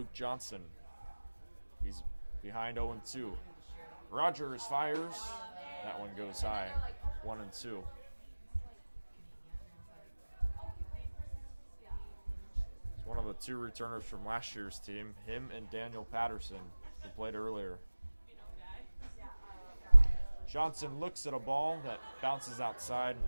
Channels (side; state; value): both; inverted; correlation -1.00